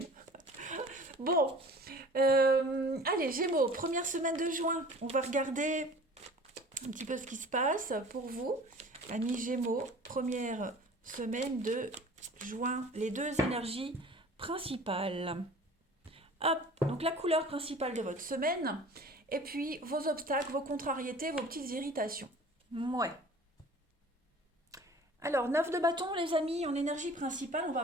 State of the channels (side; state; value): both; normal; correlation 0.45